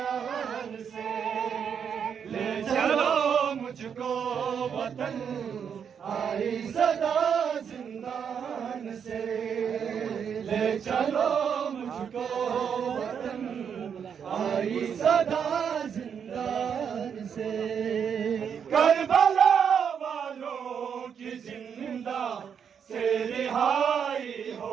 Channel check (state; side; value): quieter; left; 7.4 dB